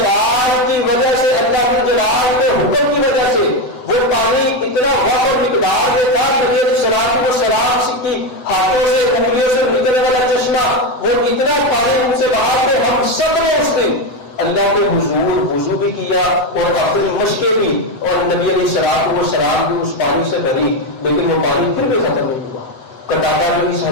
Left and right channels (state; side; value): late; right; 8.0 ms